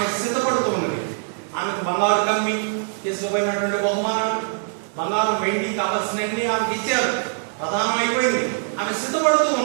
సిద్ధపడుతున్నది. ఆమెకు బంగారు కమ్మి చేసుకోబోయినటువంటి బహుమానాలు, బంగారం వెండి కావాల్సినవి ఆమెకు ఇచ్చారు. ప్రధానం అయిపోయింది. ఆమె సిద్ధపడుతూ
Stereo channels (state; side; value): silent; left; digital silence